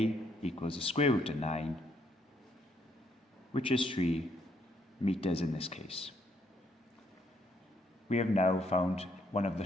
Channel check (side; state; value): both; normal; correlation 0.71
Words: equals the square root of 9, which is 3 meters in this case. We have now found one of the